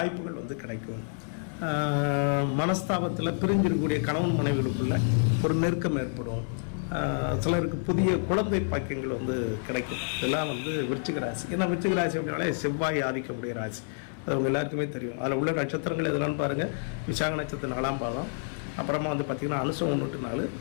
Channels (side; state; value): right; silent; 59 dB below the other